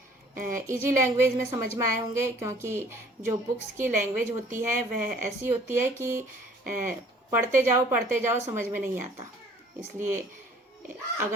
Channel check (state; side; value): normal; both; correlation 0.54